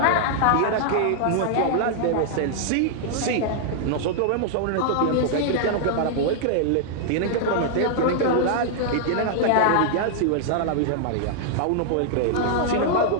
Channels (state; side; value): different; both; correlation -0.01